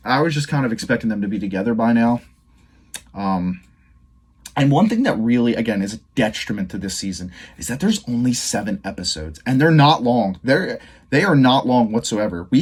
I was just kind of expecting them to be together by now. And one thing that really, again, is a detriment to this season is that there's only 7 episodes, and they're not long. They are not long whatsoever. We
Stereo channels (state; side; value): identical; both; correlation 1.00